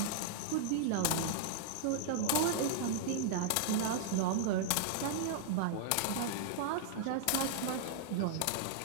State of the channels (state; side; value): different; both; correlation -0.01